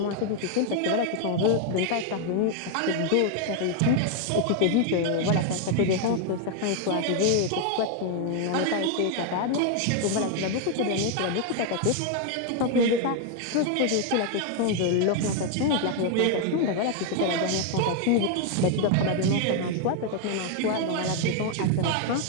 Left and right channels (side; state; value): both; different; correlation 0.00